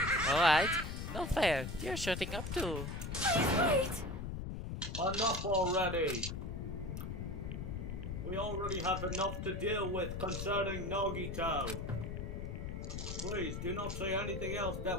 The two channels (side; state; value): left; noise; rumble, 5 dB below the sound